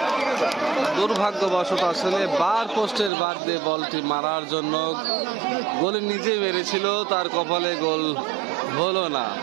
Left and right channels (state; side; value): drops out; left; at 3.1 s